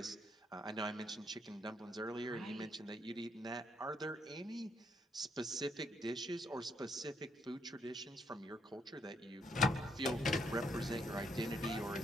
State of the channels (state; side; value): normal; both; correlation 0.73